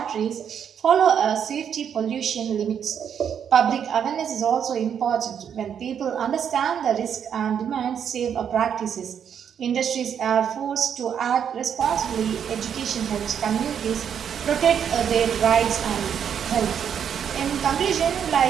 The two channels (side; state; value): left; quieter; 8.2 dB